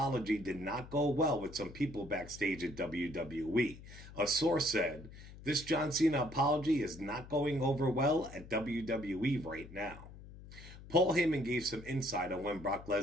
did not go well with some people backstage at WWE. A source said, "This John Cena apology is not going over well at WWE right now." Paul Heyman gave some insight on when Brock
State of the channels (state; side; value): noise; left; hum, 16 dB below the sound